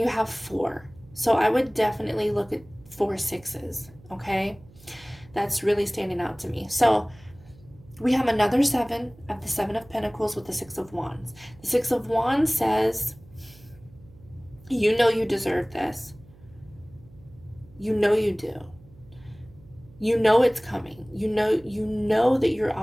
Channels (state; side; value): noise; right; hum, 24 dB below the sound